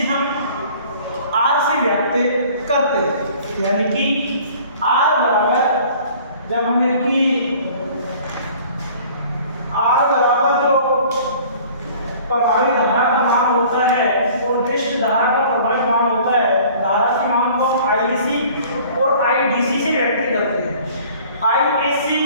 हम R से व्यक्त करते हैं। यानी कि R बराबर जब हमें कि R बराबर जो प्रभावी धारा का मान होता है और दृष्ट धारा का प्रभावी मान होता है, धारा के मान को हम IC और IDC से व्यक्त करते हैं। IAC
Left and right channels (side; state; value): both; inverted; correlation -0.50